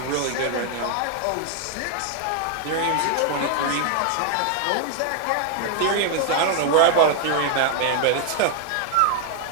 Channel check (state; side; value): different; both; correlation 0.00